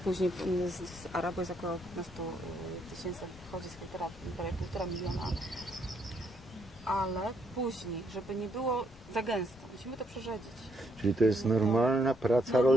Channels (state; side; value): normal; both; correlation 0.73